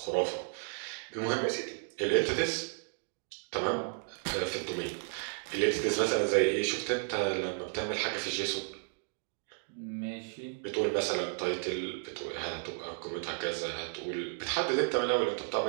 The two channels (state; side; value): silent; left; 56 dB below the other